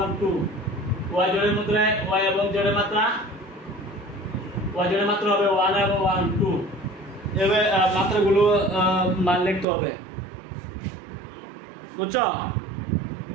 1 2, y জোড়ের মধ্যে y এবং z এর মাত্রা, y জোড়ের মাত্রা হবে 1 এবং 1 2। এভাবে মাত্রাগুলো মান লিখতে হবে, বুঝছো?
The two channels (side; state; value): left; drops out; at 9.7 s